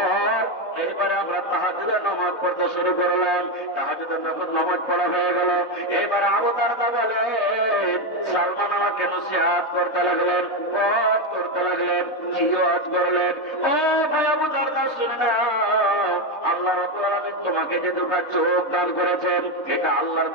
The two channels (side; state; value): right; late; 3.2 ms